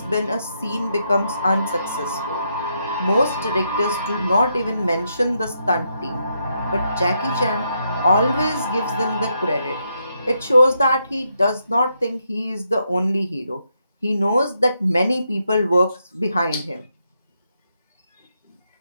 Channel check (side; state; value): both; inverted; correlation -0.80